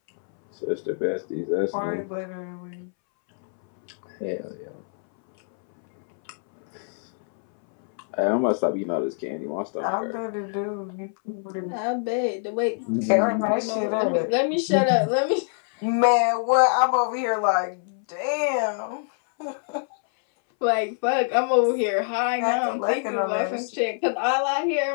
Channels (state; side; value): silent; right; 62 dB below the other